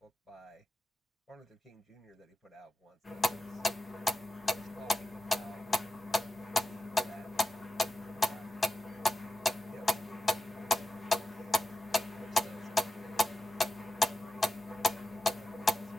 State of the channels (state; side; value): normal; both; correlation 0.89